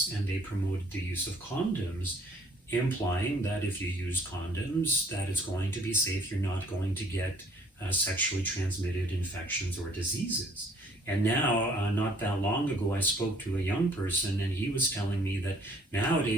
and they promoted the use of condoms, implying that if you use condoms, that it's going to be safe, you're not going to get sexually transmitted infections or diseases. And now, not that long ago, I spoke to a young person, and he was telling me that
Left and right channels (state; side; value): normal; both; correlation 0.59